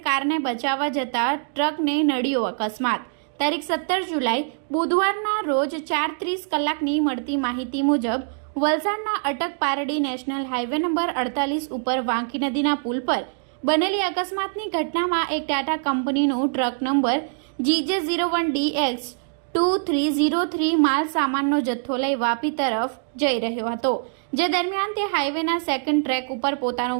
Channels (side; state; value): left; silent; digital silence